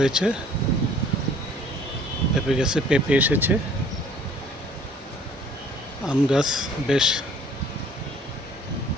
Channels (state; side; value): normal; both; correlation 0.55